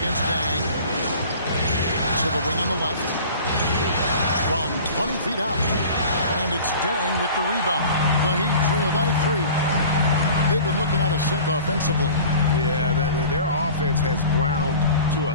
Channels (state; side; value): inverted; both; correlation -0.42